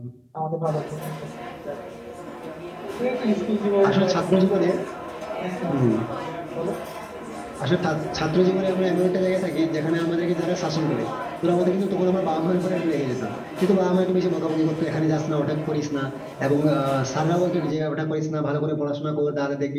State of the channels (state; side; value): identical; both; correlation 1.00